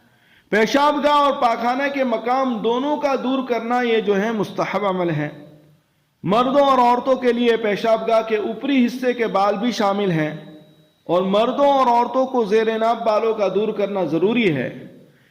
پیشاب گاہ اور پاخانہ کے مقام دونوں کا دور کرنا یہ جو ہے مستحب عمل ہے۔ مردوں اور عورتوں کے لیے پیشاب گاہ کے اوپری حصے کے بال بھی شامل ہیں، اور مردوں اور عورتوں کو زیر ناف بالوں کا دور کرنا ضروری ہے۔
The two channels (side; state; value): both; identical; correlation 1.00